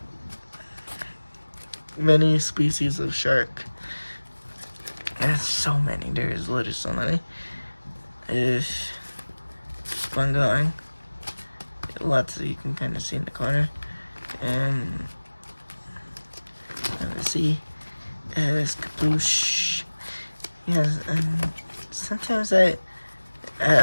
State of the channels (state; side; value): inverted; both; correlation -1.00